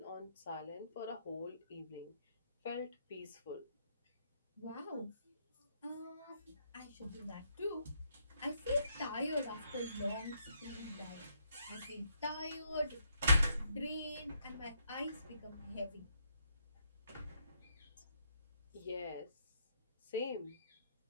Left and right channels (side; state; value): both; inverted; correlation -0.74